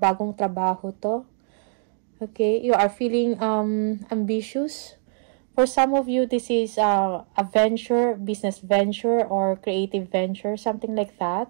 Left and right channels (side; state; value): left; silent; digital silence